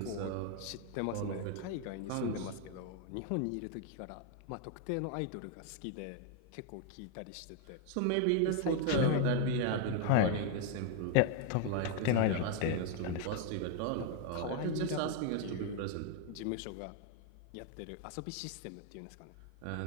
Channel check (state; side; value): different; both; correlation 0.00